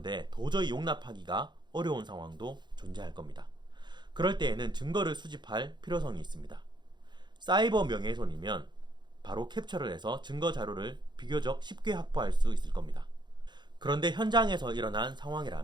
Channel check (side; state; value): left; late; 0.21 ms